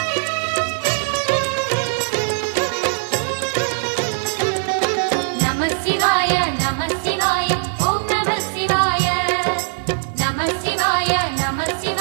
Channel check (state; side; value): silent; left; digital silence